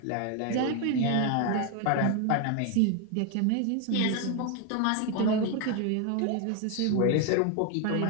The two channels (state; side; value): different; both; correlation 0.01